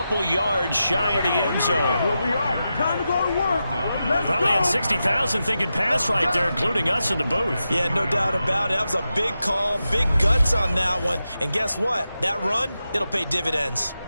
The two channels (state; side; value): inverted; both; correlation -0.90